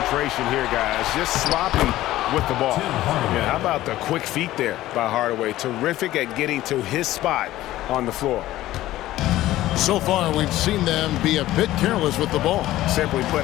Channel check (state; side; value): quieter; right; 15.3 dB